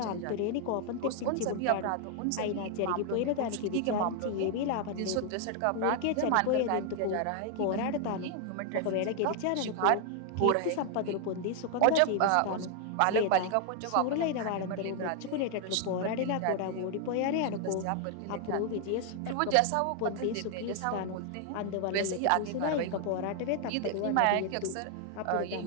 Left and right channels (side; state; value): both; different; correlation 0.00